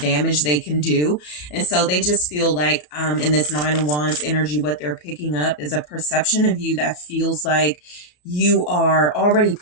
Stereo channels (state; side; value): late; right; 33 ms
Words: they can do. And so they just feel like, in this 9 of Wands energy, what they're picking up is a perception of you that feels like you are already